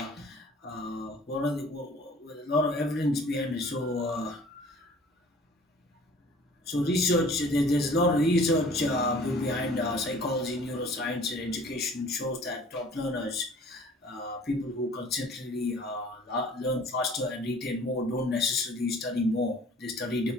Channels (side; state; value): both; normal; correlation 0.50